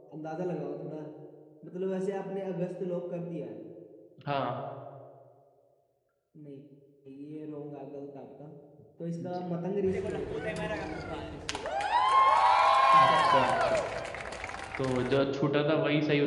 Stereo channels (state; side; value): identical; both; correlation 1.00